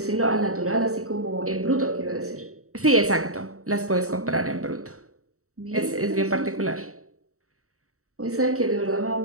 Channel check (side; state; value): left; late; 0.64 ms